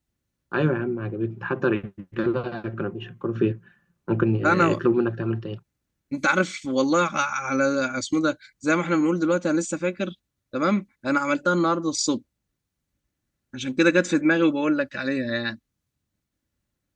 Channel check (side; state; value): both; identical; correlation 1.00